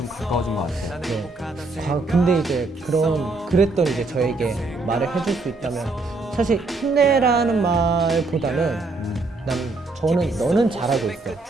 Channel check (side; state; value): left; quieter; 3.4 dB